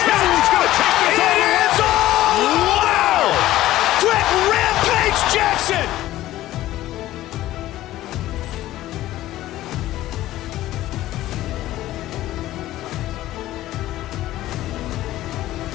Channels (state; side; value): quieter; right; 15.0 dB